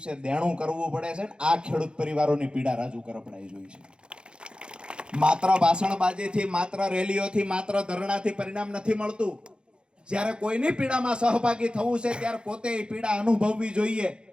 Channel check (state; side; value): late; left; 0.052 ms